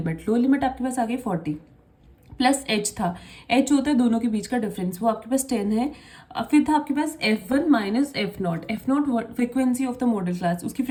लोअर लिमिट आपके पास आ गई 40 प्लस H था, H होता है दोनों के बीच का डिफरेंस, वो आपके पास 10 है। फिर था आपके पास F1 minus f not frequency of the modal class, उसकी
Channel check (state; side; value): identical; both; correlation 1.00